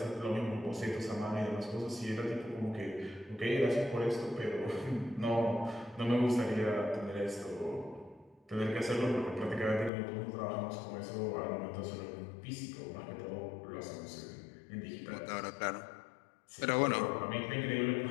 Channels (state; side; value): drops out; right; at 9.9 s